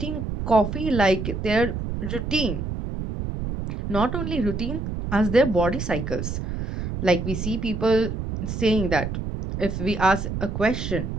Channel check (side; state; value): right; noise; rumble, 4 dB below the sound